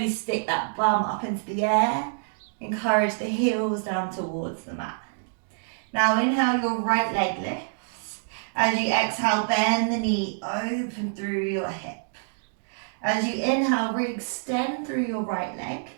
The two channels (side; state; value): left; silent; digital silence